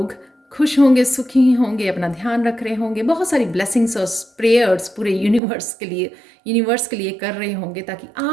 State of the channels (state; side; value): drops out; left; at 5.4 s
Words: खुश होंगे, सुखी होंगे, अपना ध्यान रख रहे होंगे, बहुत सारी ब्लेसिंग्स और प्रेयर्स पूरे यूनिवर्स के लिए कर रहे होंगे ताकि